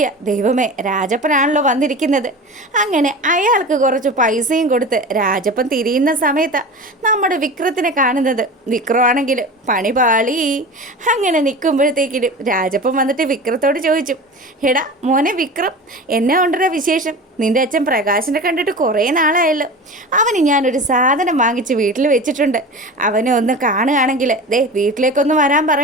ദൈവമേ, രാജപ്പനാണല്ലോ വന്നിരിക്കുന്നത്. അങ്ങനെ അയാൾക്ക് കുറച്ച് പൈസയും കൊടുത്ത് രാജപ്പൻ തിരിയുന്ന സമയത്താണ് നമ്മുടെ വിക്രത്തിനെ കാണുന്നത്. വിക്രമാണെങ്കിൽ പണി പാളി. അങ്ങനെ നിൽക്കുമ്പോഴത്തേക്കിനും രാജപ്പൻ വന്നിട്ട് വിക്രത്തോട് ചോദിച്ചു, എടാ മോനെ വിക്രം, എന്നെ കൊണ്ടുവരാ വിശേഷം? നിന്റെ അച്ഛൻ പ്രകാശിനെ കണ്ടിട്ട് കുറേ നാളായല്ലോ. അവന് ഞാനൊരു സാധനം വാങ്ങിച്ച് വീട്ടിൽ വെച്ചിട്ടുണ്ട്. അവനെ ഒന്ന് കാണുകയാണെങ്കിൽ ദേ വീട്ടിലേക്കൊന്ന് വരാൻ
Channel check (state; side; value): normal; both; correlation 0.33